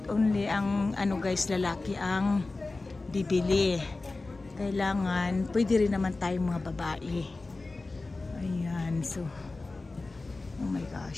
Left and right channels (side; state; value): right; quieter; 3.4 dB